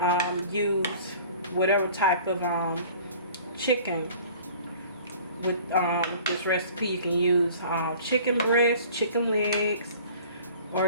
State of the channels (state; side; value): inverted; both; correlation -0.48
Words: use whatever type of chicken with this recipe. You can use chicken breast, chicken legs,